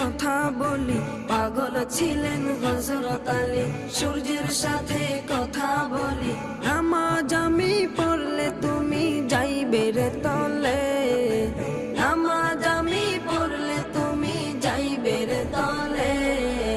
বলি। পাগল ছিলেন হযরত আলী, সূর্যের সাথে কথা বলি। নামাজ আমি পড়লে তুমি যাইবে রে তলে, নামাজ আমি পড়লে তুমি যাইবে রে তলে।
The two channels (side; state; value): both; identical; correlation 1.00